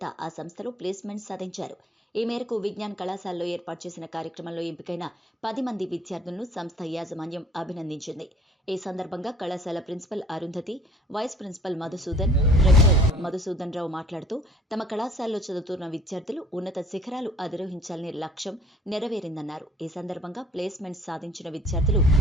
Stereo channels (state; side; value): normal; both; correlation 0.54